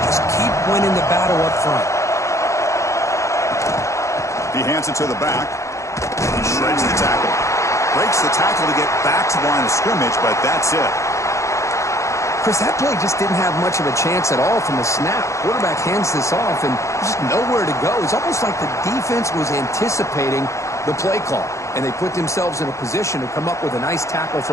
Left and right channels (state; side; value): late; right; 0.15 ms